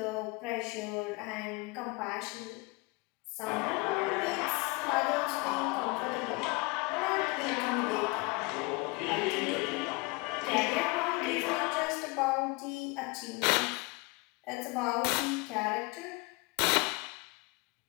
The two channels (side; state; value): right; quieter; 26.0 dB